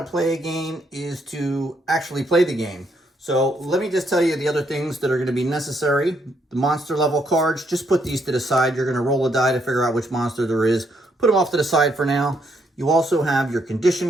play a game is to actually play the game. So let me just tell you the other things that are going to be necessary. The monster level cards, just put these to the side. You're going to roll a die to figure out which monster there is. Put them off to the side for now. You also have your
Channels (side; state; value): both; normal; correlation 0.74